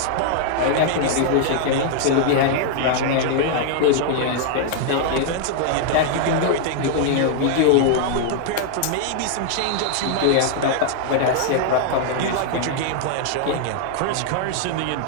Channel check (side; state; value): both; different; correlation -0.01